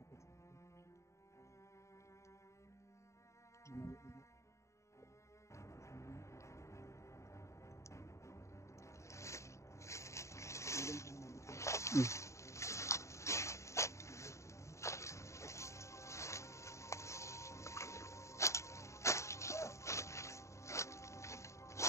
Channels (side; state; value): right; late; 0.14 ms